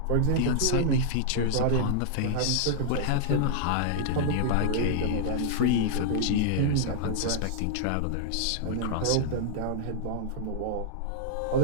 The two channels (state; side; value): different; both; correlation -0.01